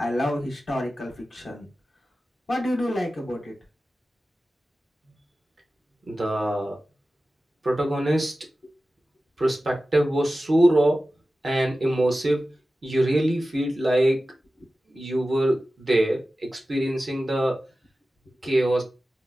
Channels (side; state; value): both; normal; correlation 0.95